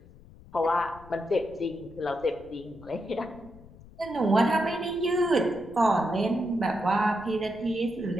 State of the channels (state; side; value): noise; left; rumble, 21 dB below the sound